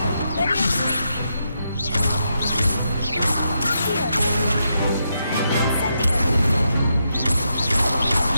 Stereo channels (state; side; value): inverted; both; correlation -0.82